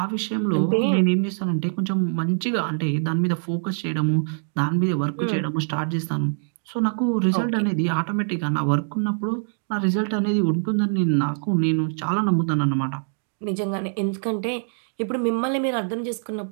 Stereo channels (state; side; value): silent; left; digital silence